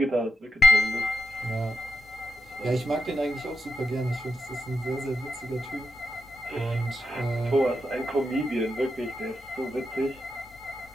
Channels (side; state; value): both; normal; correlation 0.88